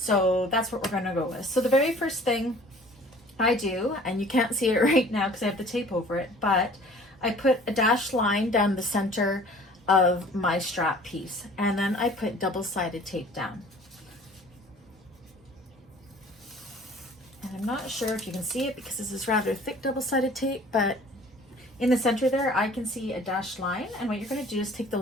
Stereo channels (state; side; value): normal; both; correlation 0.50